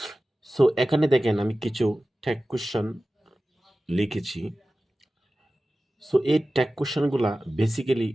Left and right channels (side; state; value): both; normal; correlation 0.95